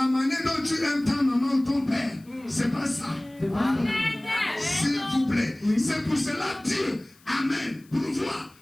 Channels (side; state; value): left; noise; hiss, 29 dB below the sound